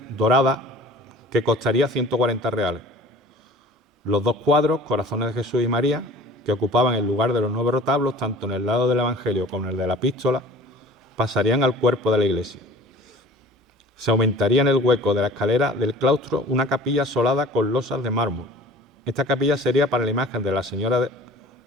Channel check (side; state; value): both; normal; correlation 0.45